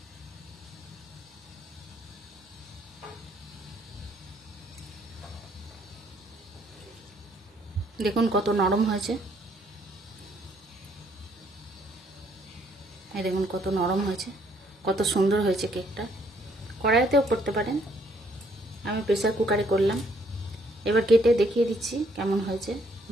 দেখুন কত নরম হয়েছে। এই দেখুন কত নরম হয়েছে, কত সুন্দর হয়েছে কেকটা। কড়াইতেও করতে পারেন, আমি প্রেসার কুকারে করলাম। এবার কেটে দেখিয়ে দিচ্ছি কেমন হয়েছে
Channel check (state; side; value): normal; both; correlation 0.67